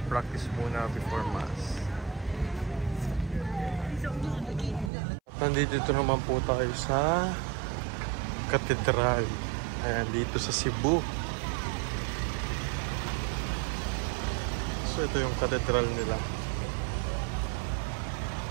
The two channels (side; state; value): left; drops out; at 4.9 s